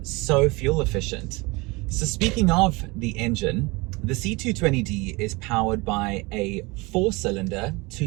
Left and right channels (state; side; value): quieter; left; 24.9 dB